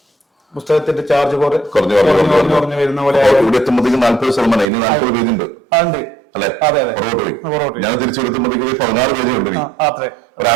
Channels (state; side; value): drops out; left; at 4.7 s